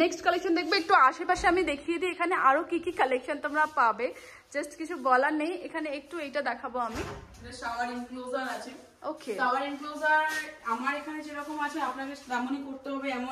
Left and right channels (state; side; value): identical; both; correlation 1.00